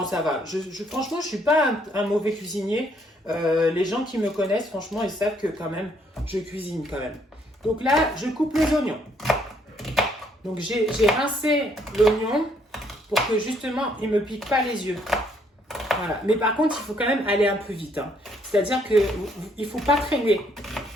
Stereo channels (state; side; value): normal; both; correlation 0.68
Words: ça va. Franchement, je ne suis pas un mauvais cuisinier. Les gens qui me connaissent, franchement, ils savent que quand même, je cuisine quand même. Donc là, je coupe les oignons. Donc, j'ai rincé l'oignon pour que justement, il ne me pique pas les yeux. Voilà. Mais par contre, il faut quand même aller un peu vite. Hein. C'est-à-dire qu'il ne faut pas traîner.